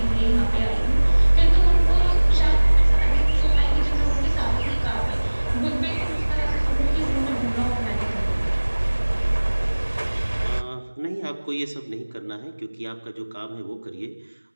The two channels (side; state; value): both; inverted; correlation -1.00